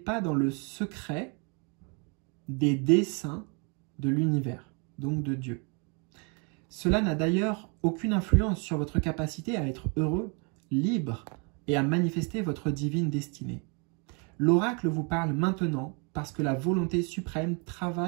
dans le secret des desseins de l'univers, donc de Dieu. Cela n'a d'ailleurs aucune influence sur votre capacité à être heureux, libre et à manifester votre divine destinée. L'oracle vous parle maintenant parce que la volonté suprême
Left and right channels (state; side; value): quieter; left; 34.9 dB